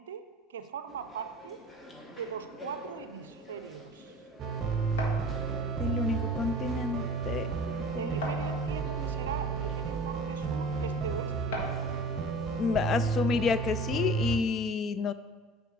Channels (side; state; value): both; normal; correlation 0.42